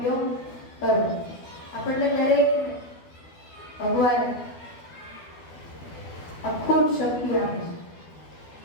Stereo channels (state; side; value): late; right; 12 ms